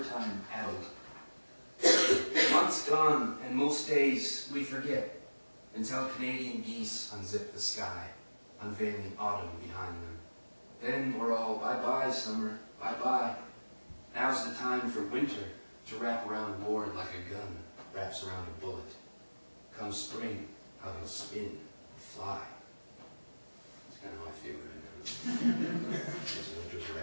Addled. Months gone, and most days we forget, until Canadian geese unzip the sky, unveiling autumn behind them. Then we're all, bye-bye, summer, bye-bye. Now's the time for winter to wrap around Ward like a gun wraps around a bullet. Come spring, how he'll spin and fly. That's kind of how I feel right now. Winter's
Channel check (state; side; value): inverted; both; correlation -1.00